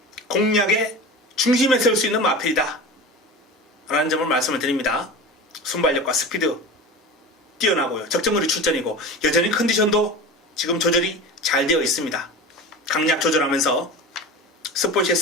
공략의 중심에 세울 수 있는 마필이다 라는 점을 말씀을 드립니다. 순발력과 스피드 뛰어나고요. 적정거리 출전이고 여전히 컨디션도 지금 조절이 잘 되어 있습니다. 강약 조절하면서 스포츠의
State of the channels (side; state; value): both; normal; correlation 0.31